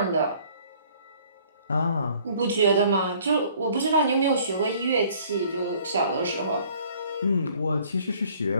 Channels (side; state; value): both; inverted; correlation -0.57